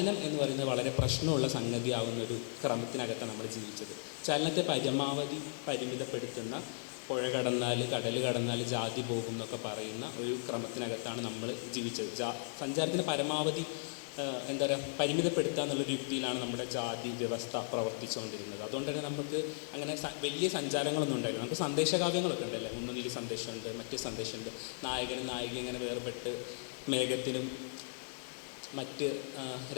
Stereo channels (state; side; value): silent; right; digital silence